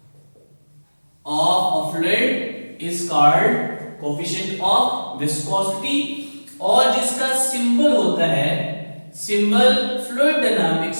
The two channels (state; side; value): inverted; both; correlation -1.00